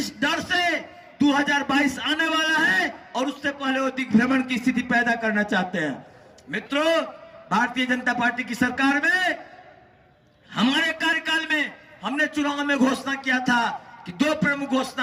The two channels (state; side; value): identical; both; correlation 1.00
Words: डर से 2022 आने वाला है और उससे पहले वो दिग्भ्रमण की स्थिति पैदा करना चाहते हैं। मित्रों, भारतीय जनता पार्टी की सरकार में हमारे कार्यकाल में हमने चुनाव में घोषणा किया था कि 2 प्रमुख